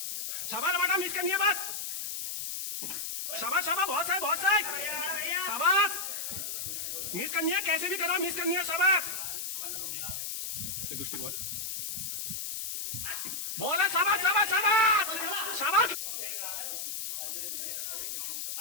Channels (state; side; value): noise; left; hiss, 4 dB below the sound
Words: शाबाश बेटा, मिस करनी है बस, शाबाश शाबाश, बहुत सही बहुत सही, शाबाश, मिस करनी है, कैसे भी करो मिस करनी है, शाबाश। ये दूसरी बॉल, बॉल है, शाबाश शाबाश शाबाश शाबाश,